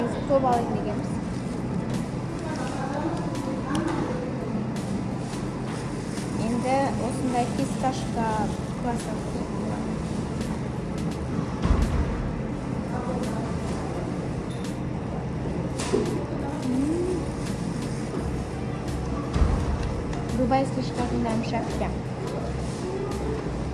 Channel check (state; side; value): identical; both; correlation 1.00